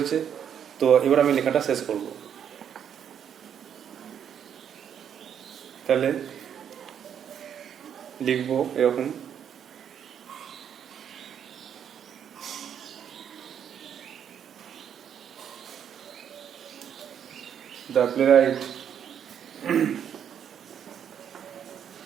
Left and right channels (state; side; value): quieter; left; 8.7 dB